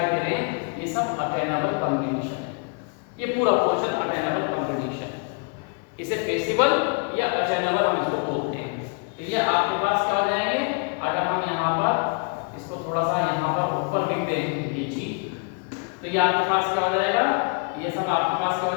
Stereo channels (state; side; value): quieter; right; 38.2 dB